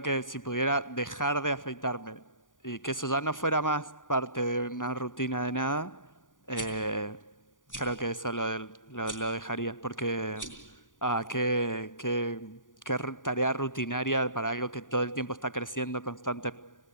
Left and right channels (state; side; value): late; right; 0.88 ms